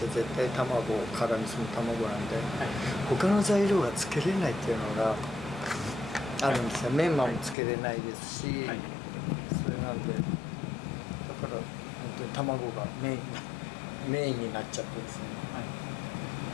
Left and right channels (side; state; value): right; drops out; at 7.6 s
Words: 対卵、辛味噌の卵なんで、他の材料がつけれないっていうのがあるんですよ。メンマもつけれないですし、それなんで、だから本当に卵がメインになっちゃってですね。